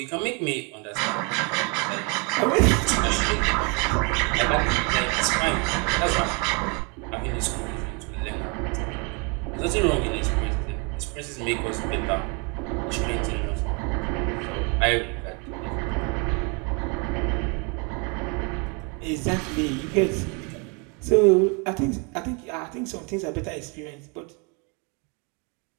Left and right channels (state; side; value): quieter; left; 33.1 dB